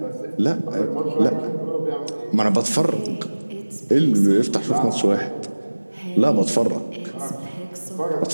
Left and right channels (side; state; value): both; inverted; correlation -1.00